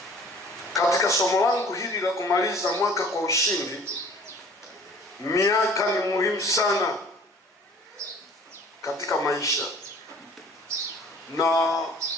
katika somo langu hili la kumaliza mwaka kwa ushindi, miaka ni muhimu sana katika maisha. Na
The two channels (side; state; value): both; normal; correlation 0.50